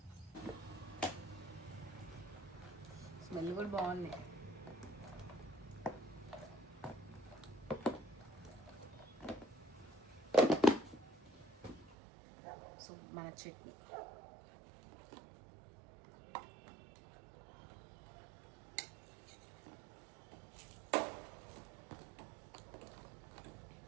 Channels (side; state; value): left; drops out; at 12.0 s